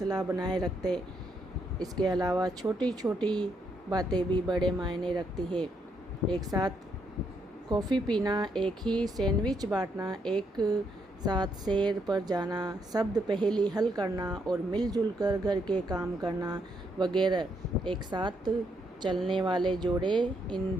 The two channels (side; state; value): both; normal; correlation 0.76